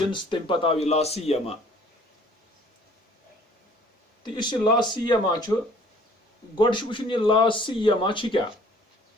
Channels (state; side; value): normal; both; correlation 0.55